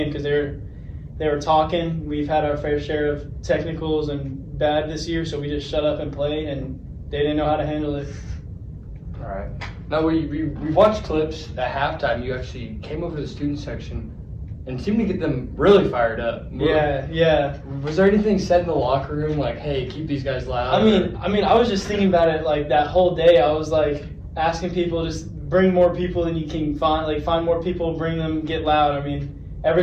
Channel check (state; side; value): identical; both; correlation 1.00